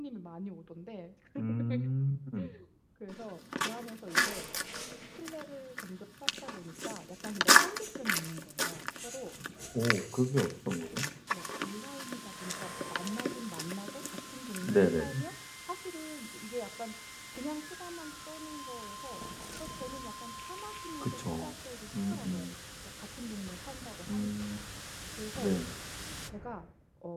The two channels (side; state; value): both; identical; correlation 1.00